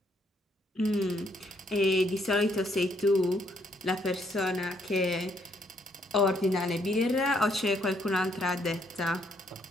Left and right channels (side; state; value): both; normal; correlation 0.71